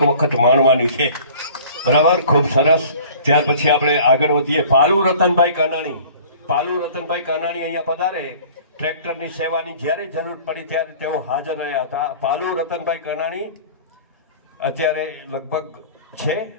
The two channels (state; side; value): inverted; both; correlation -0.47